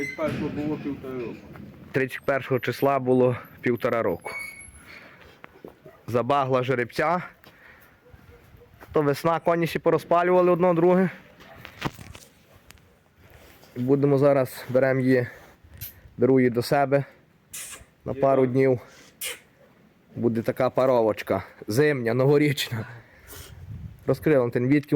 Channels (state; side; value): identical; both; correlation 1.00